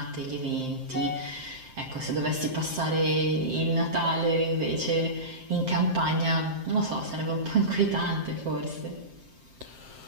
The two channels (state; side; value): late; left; 7.6 ms